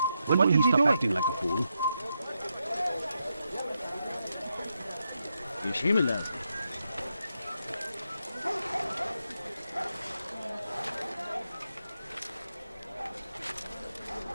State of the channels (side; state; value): both; inverted; correlation -0.84